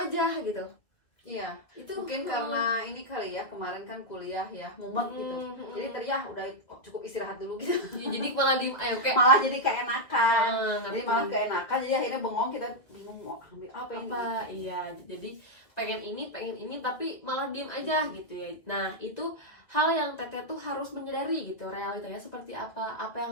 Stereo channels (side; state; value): right; late; 2.2 ms